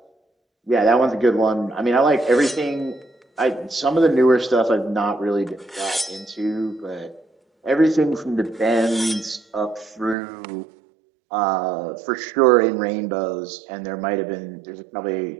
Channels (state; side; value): drops out; left; at 10.2 s